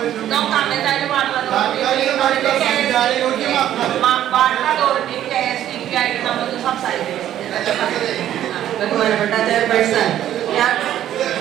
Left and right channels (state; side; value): quieter; left; 11.7 dB